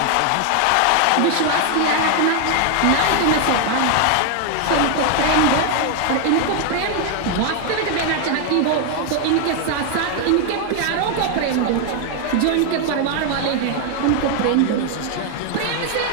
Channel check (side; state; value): both; different; correlation 0.00